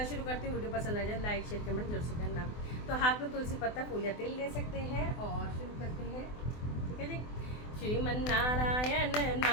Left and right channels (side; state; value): right; late; 24 ms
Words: शुरू करती हूँ। वीडियो पसंद आ जाए लाइक शेयर कमेंट जरूर से करना। तो हाथ में तुलसी पत्ता फूल या तेल ले सकते हैं और शुरू करते हैं। ठीक है जी। श्रीमन नारायण